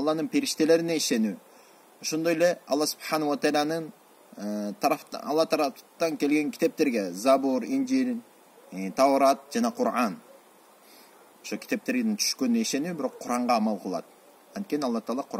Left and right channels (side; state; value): both; identical; correlation 1.00